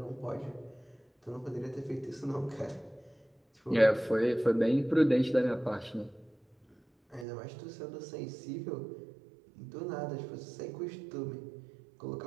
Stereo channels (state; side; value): drops out; left; at 7.2 s